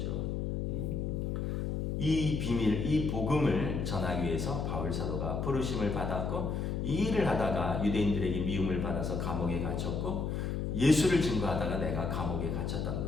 이 비밀, 이 복음을 전하기 위해서 바울 사도가 부르심을 받았고 이 일을 하다가 유대인들에게 미움을 받아서 감옥에 갇혔고 예수를 증거하다가 내가 감옥에 갇혔다는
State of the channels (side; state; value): left; noise; hum, 1 dB below the sound